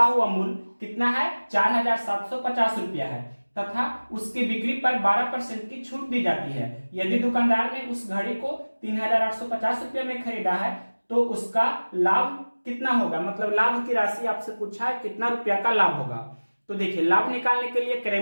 हुआ मूल्य कितना है, 4,750 रुपया है तथा उसकी बिक्री पर 12% की छूट दी जाती है। यदि दुकानदार ने उस घड़ी को 3,850 रुपया में खरीदा है तो उसका लाभ कितना होगा, मतलब लाभ की राशि आपसे पूछा है कितना रुपया का लाभ होगा। तो देखिए लाभ निकालने के लिए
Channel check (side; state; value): both; inverted; correlation -1.00